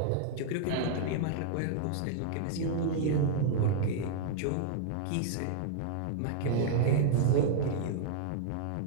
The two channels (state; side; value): different; both; correlation -0.01